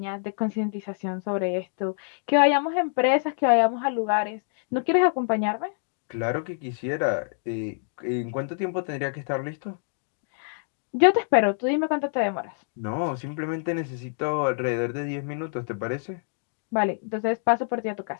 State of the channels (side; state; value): right; silent; digital silence